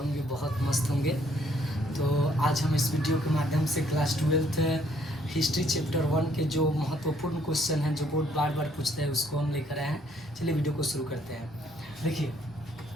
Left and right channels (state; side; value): normal; both; correlation 0.66